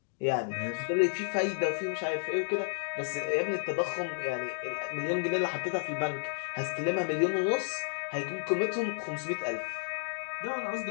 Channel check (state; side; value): silent; right; digital silence